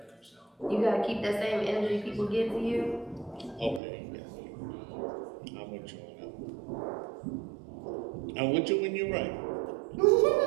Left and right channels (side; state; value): left; drops out; at 3.8 s